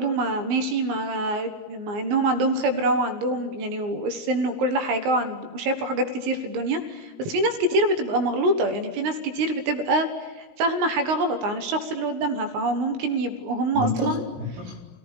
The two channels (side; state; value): left; late; 17 ms